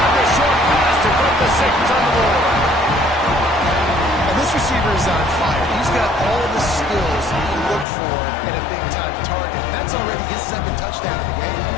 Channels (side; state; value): right; drops out; at 7.9 s